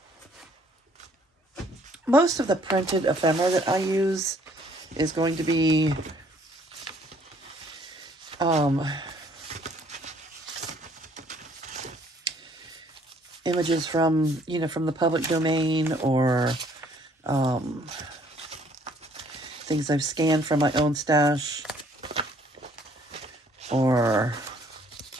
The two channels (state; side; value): normal; both; correlation 0.62